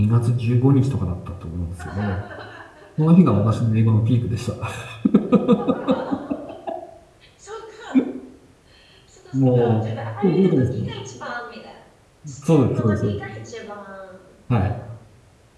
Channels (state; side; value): identical; both; correlation 1.00